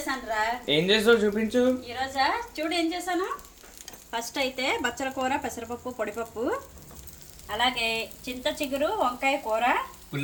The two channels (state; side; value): identical; both; correlation 1.00